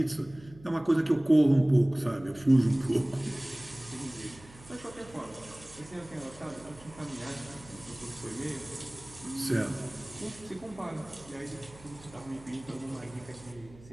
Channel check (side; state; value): right; noise; hum, 21 dB below the sound